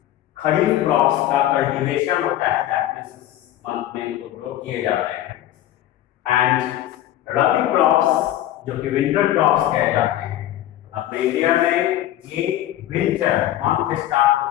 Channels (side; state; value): right; quieter; 13.2 dB